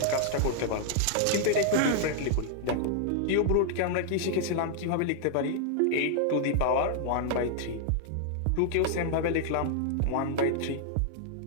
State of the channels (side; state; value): both; different; correlation 0.00